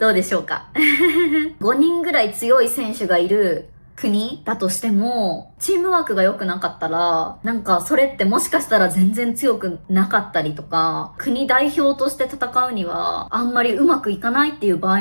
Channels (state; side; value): inverted; both; correlation -1.00